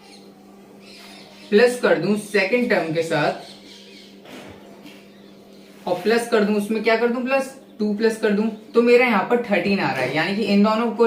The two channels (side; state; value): both; identical; correlation 1.00